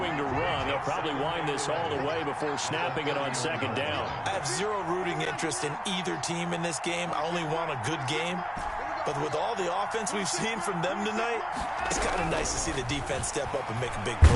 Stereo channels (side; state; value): both; identical; correlation 1.00